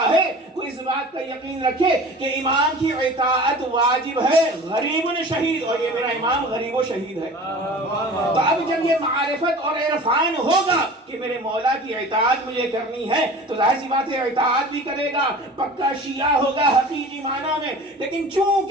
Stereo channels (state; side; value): normal; both; correlation 0.40